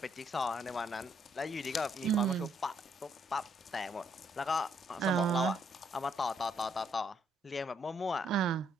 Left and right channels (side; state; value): both; normal; correlation 0.71